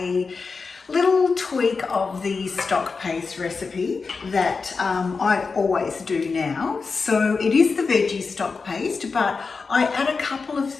little tweak of the stock paste recipe that I always do now. So it is the veggie stock paste, but I add a couple of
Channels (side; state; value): right; quieter; 4.6 dB